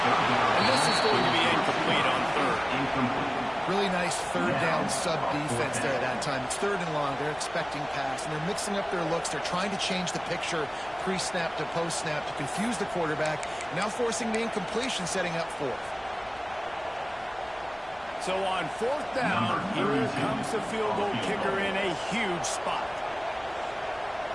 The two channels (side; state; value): left; noise; rumble, 26 dB below the sound